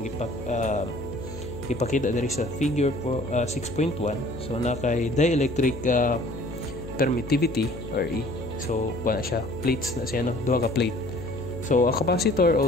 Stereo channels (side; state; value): left; noise; hum, 12 dB below the sound